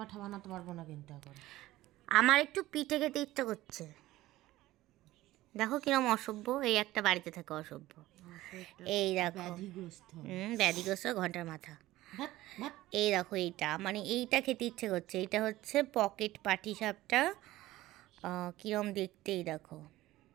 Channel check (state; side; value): quieter; left; 16.5 dB